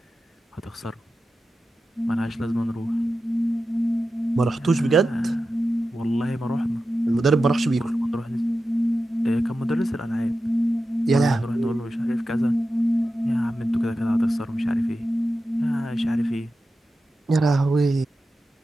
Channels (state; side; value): normal; both; correlation 0.92